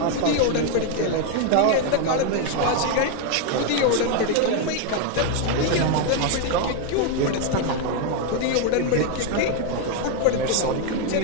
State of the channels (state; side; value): different; both; correlation 0.01